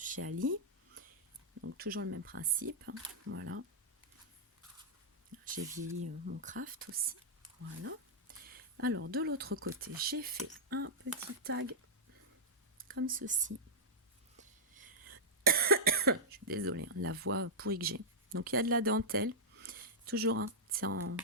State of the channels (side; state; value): both; normal; correlation -0.09